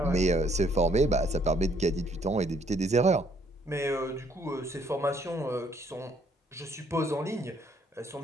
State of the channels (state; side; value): normal; both; correlation 0.66